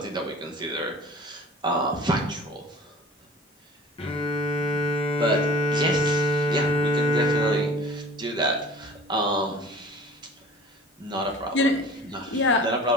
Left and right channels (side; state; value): both; normal; correlation 0.43